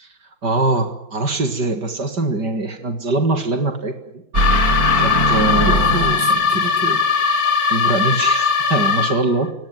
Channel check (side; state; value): left; late; 5.1 ms